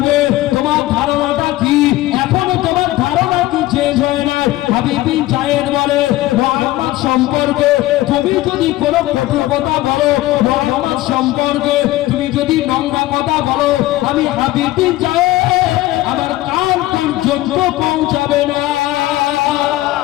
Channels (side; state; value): right; quieter; 16.7 dB